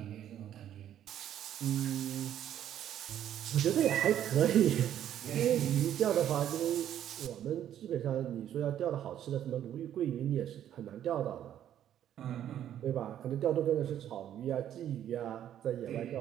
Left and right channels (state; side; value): quieter; left; 10.8 dB